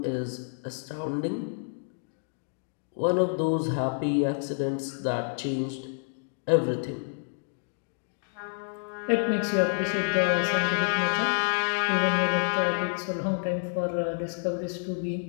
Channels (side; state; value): right; silent; digital silence